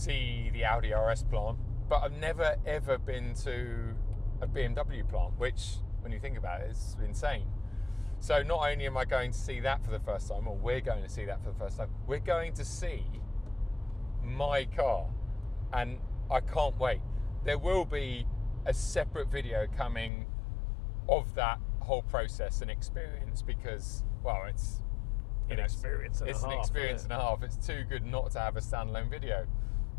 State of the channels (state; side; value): drops out; right; at 20.1 s